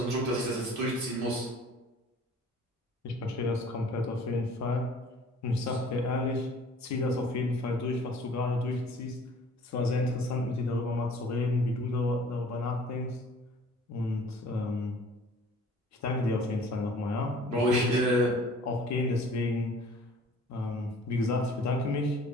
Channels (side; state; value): both; normal; correlation 0.51